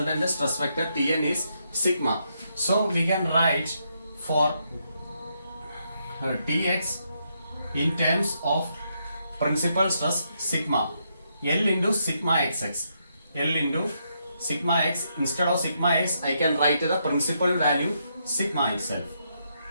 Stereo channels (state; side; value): inverted; both; correlation -0.78